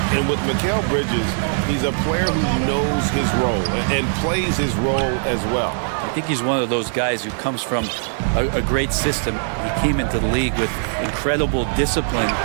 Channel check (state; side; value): silent; left; digital silence